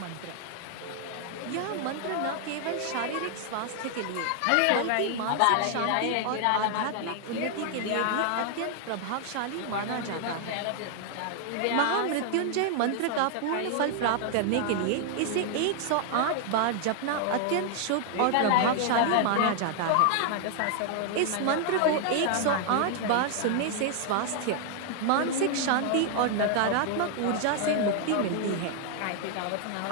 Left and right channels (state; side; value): different; both; correlation 0.00